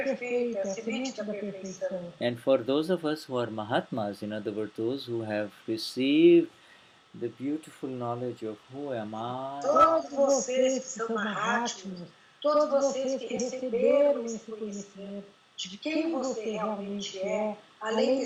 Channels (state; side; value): identical; both; correlation 1.00